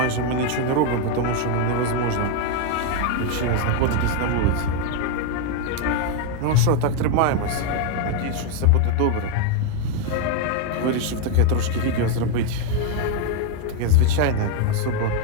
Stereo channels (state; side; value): different; both; correlation 0.01